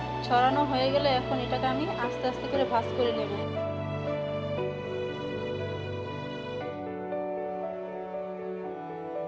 ছড়ানো হয়ে গেলে এখন এটাকে আমি আস্তে আস্তে করে ভাঁজ করে নেব।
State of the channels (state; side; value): identical; both; correlation 1.00